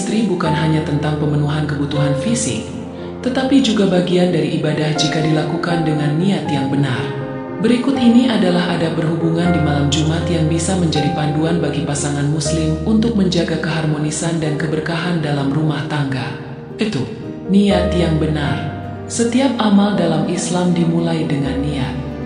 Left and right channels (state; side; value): identical; both; correlation 1.00